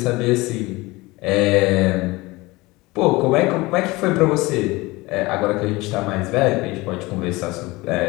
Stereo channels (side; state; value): right; quieter; 21.9 dB